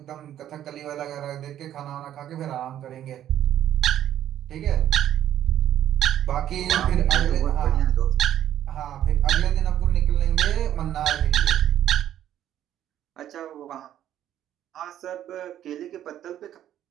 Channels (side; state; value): left; quieter; 11.4 dB